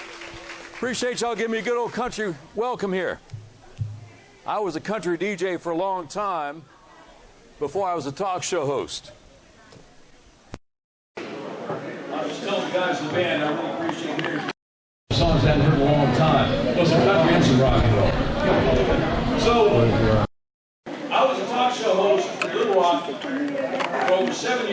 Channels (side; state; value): both; identical; correlation 1.00